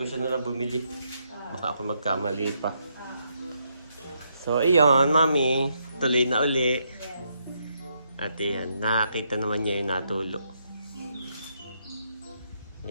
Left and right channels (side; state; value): both; inverted; correlation -0.77